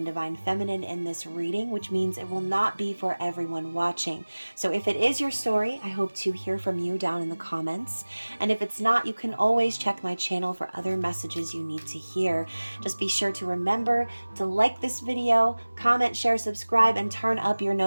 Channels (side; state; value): both; inverted; correlation -1.00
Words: Divine Feminine in this reading, which means it will not be for everyone watching. So if it is your story, I hope to hear from you down in the comments. And if it's not, you can always check my channel for other messages you need to hear. Just be sure to remember to like this video, comment, share, subscribe, and turn up your